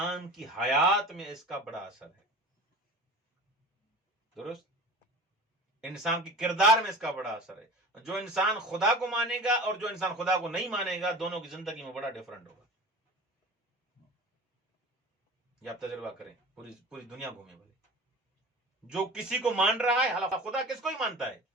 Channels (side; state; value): both; normal; correlation 0.36